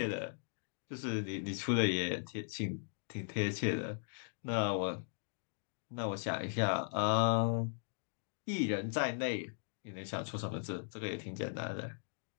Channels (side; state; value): right; silent; digital silence